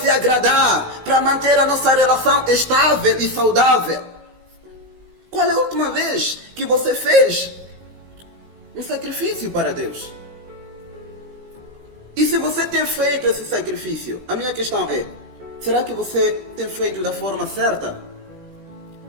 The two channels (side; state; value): left; late; 16 ms